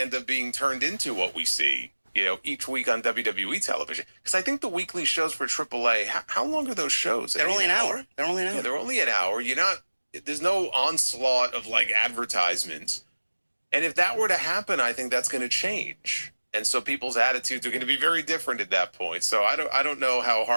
up being turned into what we see, each week on WWE television. Because I think the weekly shows for AAA, how long are those shows? They're only an hour. They're only an hour. Yeah, they're only an hour. There's no onslaught of like advertisements. And if that were to happen, I think that's going to change. And so people's attitudes are going to be very different at that point. So I don't know how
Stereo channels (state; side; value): inverted; both; correlation -1.00